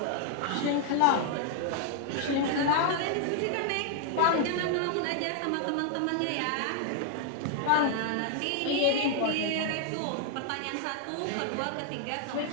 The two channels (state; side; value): different; both; correlation 0.00